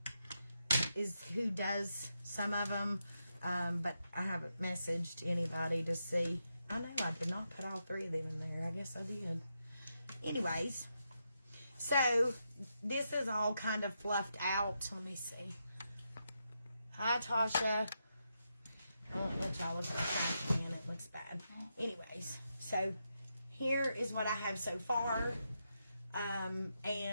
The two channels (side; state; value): both; inverted; correlation -0.84